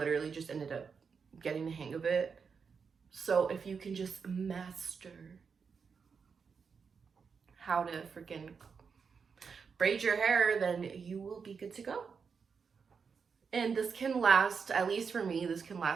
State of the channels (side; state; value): left; quieter; 5.8 dB